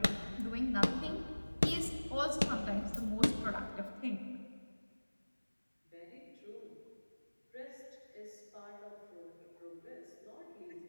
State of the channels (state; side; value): inverted; both; correlation -1.00